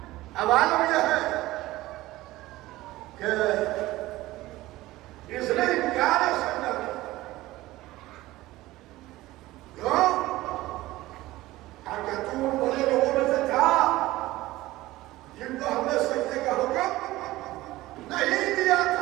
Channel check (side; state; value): left; quieter; 17.6 dB